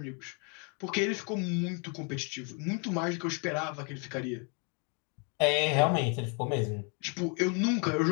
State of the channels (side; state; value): right; quieter; 36.8 dB